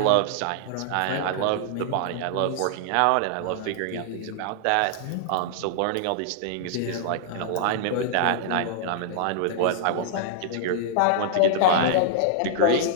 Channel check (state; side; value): different; both; correlation -0.01